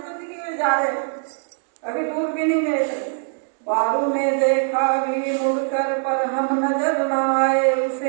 तो दिख में जा रहे हो, अभी दूर भी नहीं गए थे। बारू ने देखा भी मुड़कर पर हम नजर न आए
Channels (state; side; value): silent; left; 64 dB below the other